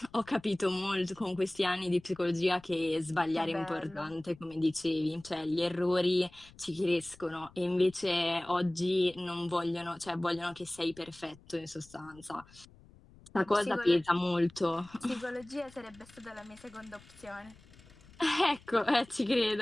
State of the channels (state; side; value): noise; left; rumble, 24 dB below the sound